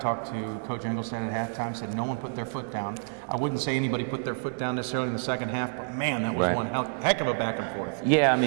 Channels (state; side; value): silent; left; digital silence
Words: to Coach Engelstad at halftime, said no one put their foot down. I wouldn't say anybody put their foot down necessarily in the second half, but man, that was one heck of a back and forth. Yeah, I